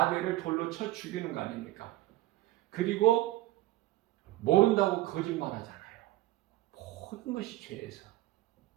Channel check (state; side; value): quieter; left; 17.3 dB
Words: 돌로 쳐 죽이는 거 아닙니까? 그리고 모른다고 거짓말하잖아요. 모든 것이 죄에서.